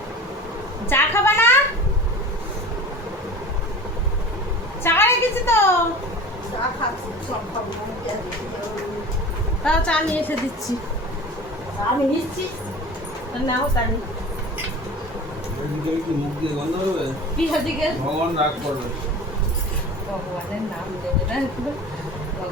চা খাবা না? চা রেখেছি তো, তাও চা নিয়ে এসে দিচ্ছি। আমি নিচ্ছি, নাও তাহলে। মুখ দিয়ে গন্ধ হবে, কি হদিকে ভগবান রাগ করবে। ভগবান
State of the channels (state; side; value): normal; both; correlation 0.37